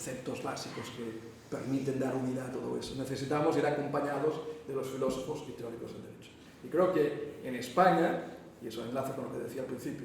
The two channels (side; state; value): both; identical; correlation 1.00